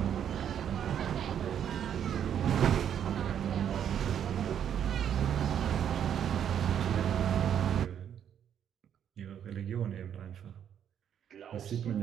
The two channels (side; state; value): left; quieter; 9.1 dB